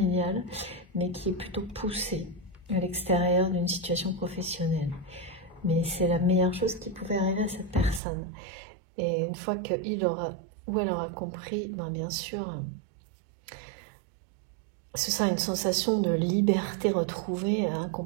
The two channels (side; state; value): left; drops out; at 8.0 s